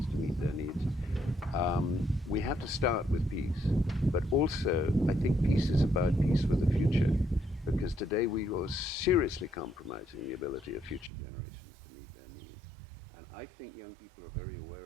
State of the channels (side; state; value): left; drops out; at 11.1 s